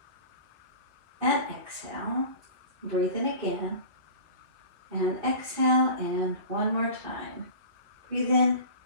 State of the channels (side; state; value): left; late; 3.0 ms